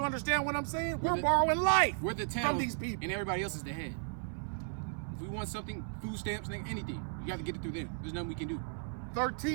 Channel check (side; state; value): left; silent; 55 dB below the other